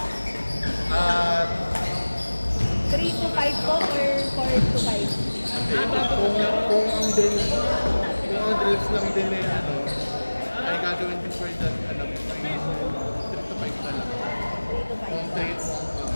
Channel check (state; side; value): inverted; both; correlation -1.00